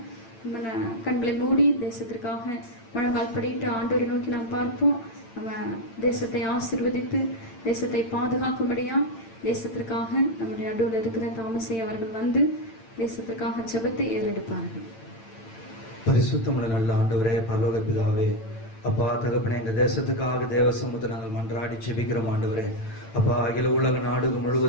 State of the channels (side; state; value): right; late; 8.9 ms